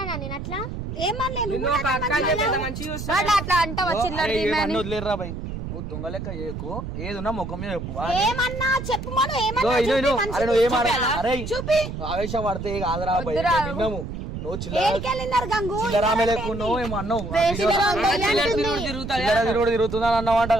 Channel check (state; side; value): noise; right; rumble, 7 dB below the sound